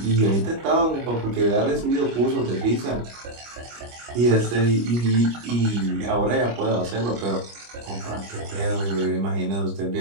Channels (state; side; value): late; left; 25 ms